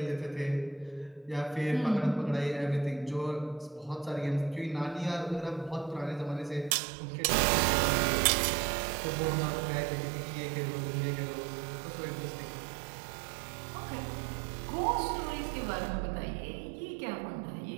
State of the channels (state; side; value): drops out; left; at 6.8 s